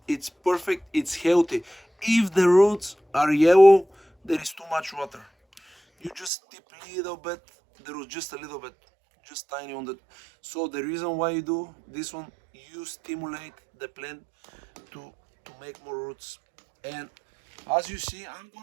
it's perfect. It's healthy. If the roots are yellow, there is too much water. You just tip a little bit. The roots, just a little bit, just tiny on the. So the reason why you do this one, you stimulate the plant to make more roots. And as you see, I'm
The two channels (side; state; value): left; drops out; at 6.3 s